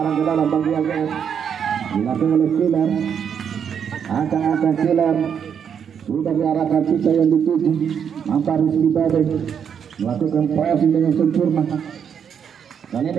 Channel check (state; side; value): quieter; left; 7.7 dB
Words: ke dalam bagian AGS dilakukan oleh Killer. Angkat Killer sudah diarahkan kita yang dituju. Nampak Rizky Badai melakukan pressing dengan sempurna. Kali